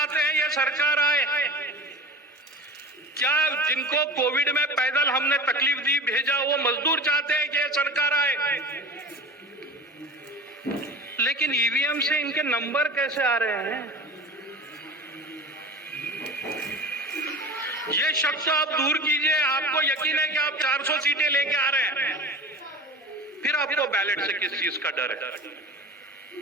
हैं यह सरकार आए? क्या जिनको कोविड में पैदल हमने तकलीफ दी भेजा वो मजदूर चाहते हैं कि यह सरकार आए? लेकिन ईवीएम से इनके नंबर कैसे आ रहे हैं? ये शक तो आप दूर कीजिए, आपको यकीन है कि आप 400 सीटें लेके आ रहे हैं, फिर आपको बैलेट से किस चीज का डर है?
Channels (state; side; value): normal; both; correlation 0.34